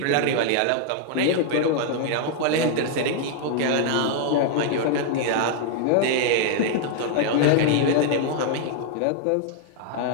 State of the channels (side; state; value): both; different; correlation 0.00